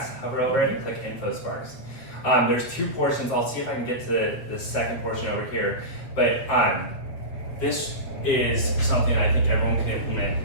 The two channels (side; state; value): right; late; 8.1 ms